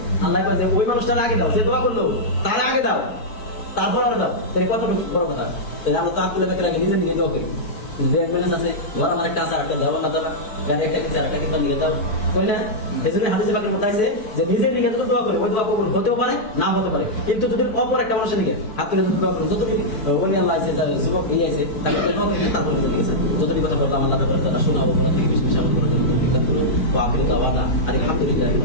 আল্লাহ কয় যে ওই মানুষটার আগে দাও, যে দোয়া করলো তার আগে দাও, তারপর আর দাও। তাহলে কত বড় কথা। তাহলে আমরা তো আব্দুল্লাহ ব্যাগের আগে নিজে নিয়ে দোয়া করি, ব্যালেন্স আছে, ঘর আমার একটা আছে, একটা দেওয়া না দেওয়া, গাড়ি একটা কিনছে আরেকটা কিনতে নিয়ে দাও, বললে এজন্য হাদিসে পাকের মধ্যে আছে যে নিজের দিকে যদি দোয়া করে ওই দোয়া কবুল হতেও পারে না হতে পারে। কিন্তু যদি অপর একটা মানুষের দিকে হাত তুলে যদি দোয়া করে, যতদিন ওলি আল্লাহ আছে, যুবক এই আছে, তারপরে যতদিন কথা বলতাম আল্লাহ তাআলা শোনা ও বলা থেকে বেশি বেশি আমল করার জন্য আলহামদুলিল্লাহ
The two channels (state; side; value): late; right; 4.6 ms